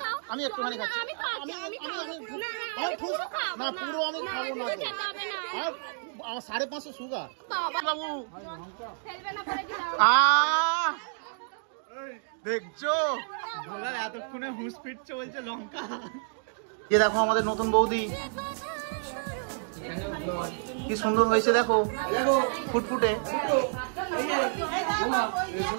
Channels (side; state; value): left; silent; digital silence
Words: আমি একটুখানি খাচ্ছি। না পুরো আমি খাবো না, আমার 550 সুগার। বাবু দেখছো এতক্ষণে হুঁশ ফিটছে, বলছে লঙ্কা। যে দেখো আমাদের নতুন বৌদি কি সুন্দর হয়েছে, দেখো ফুটফুটে।